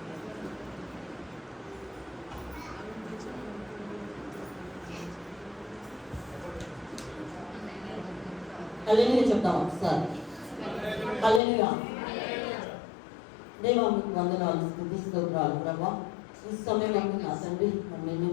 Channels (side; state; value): right; drops out; at 11.4 s